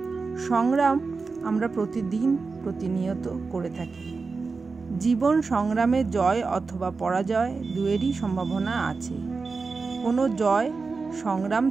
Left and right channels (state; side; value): quieter; left; 4.4 dB